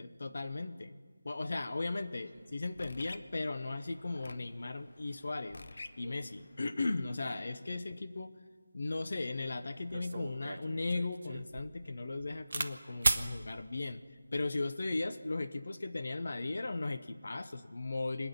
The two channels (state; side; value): inverted; both; correlation -0.95